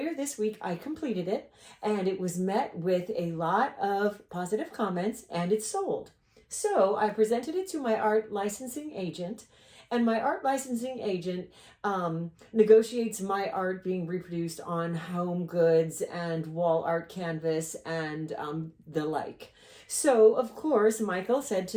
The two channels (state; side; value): identical; both; correlation 1.00